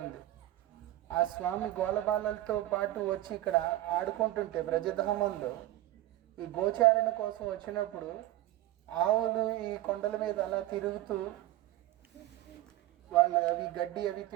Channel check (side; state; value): left; quieter; 15.3 dB